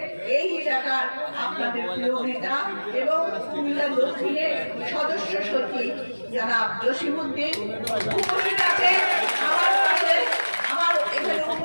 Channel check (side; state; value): both; inverted; correlation -1.00